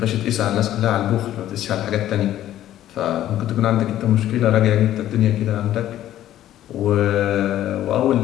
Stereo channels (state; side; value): quieter; right; 12.7 dB